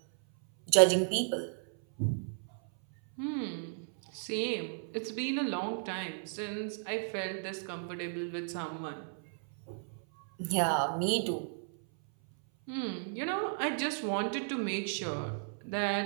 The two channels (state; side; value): silent; left; 55 dB below the other